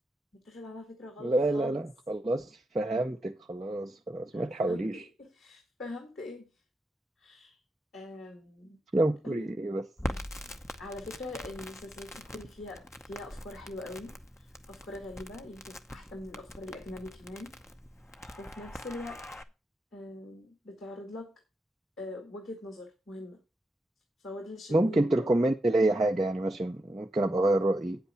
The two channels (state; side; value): normal; both; correlation 0.84